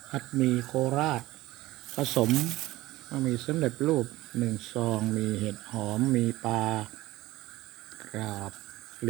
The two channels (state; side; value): quieter; left; 17.6 dB